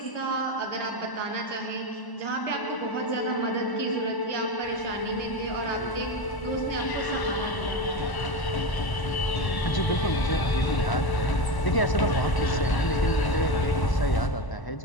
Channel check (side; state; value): right; late; 1.0 ms